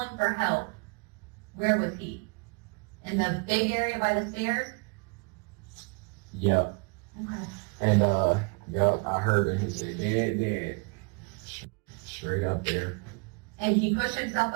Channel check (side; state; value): left; quieter; 33.8 dB